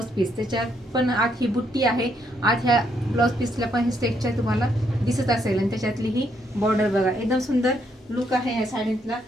पीस, त्याच्यात पण आत ही बुट्टी आहे. आत ह्या ब्लाऊज पीसला पण हे स्टेजच्या तुम्हाला दिसत असेल आणि त्याच्यातली ही बॉर्डर बघा, एकदम सुंदर लुक आहे ह्या साडीतला.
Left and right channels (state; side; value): normal; both; correlation 0.74